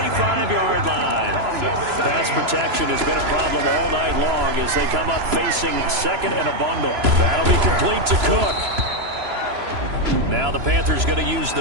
line. Pass protection has been a problem all night long as they come up facing 2nd and a bundle. That'll be complete to Cook. Now the Panthers going to use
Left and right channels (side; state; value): left; late; 3.0 ms